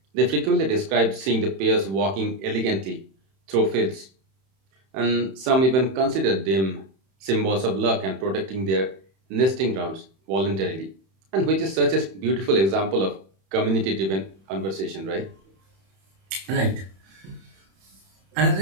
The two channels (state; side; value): late; left; 31 ms